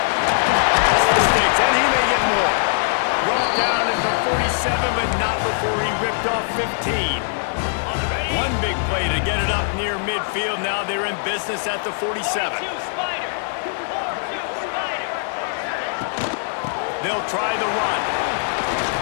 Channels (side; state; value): right; silent; digital silence